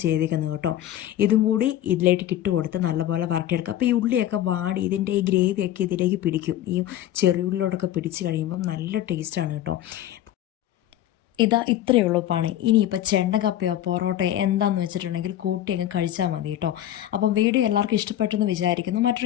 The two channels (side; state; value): right; quieter; 12.4 dB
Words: ചെയ്തേക്കുന്നത് കേട്ടോ. ഇതും കൂടി ഇതിലേക്ക് ഇട്ട് കൊടുത്ത് നല്ലപോലെ വരട്ടിയെടുക്കുക. അപ്പോൾ ഈ ഉള്ളിയൊക്കെ വാടി ഇതിൻ്റെ ഈ ഗ്രേവിയൊക്കെ ഇതിലേക്ക് പിടിക്കും. ഈ ചെറിയുള്ളിയോടൊക്കെ പിടിച്ച് കഴിയുമ്പം നല്ല ടേസ്റ്റാണ് കേട്ടോ. ഇത്രയേ ഉള്ളൂ പണി. ഇനിയിപ്പോൾ ചെണ്ടക്കപ്പയോ പൊറോട്ടയോ എന്താണെന്ന് വെച്ചിട്ടുണ്ടെങ്കിൽ കൂട്ടി അങ്ങ് കഴിച്ചാൽ മതി കേട്ടോ. അപ്പം വീഡിയോ എല്ലാവർക്കും ഇഷ്ടപ്പെട്ടെന്ന് വിചാരിക്കുന്നു.